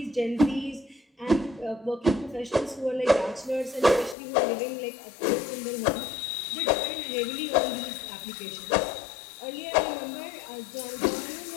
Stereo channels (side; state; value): right; drops out; at 4.2 s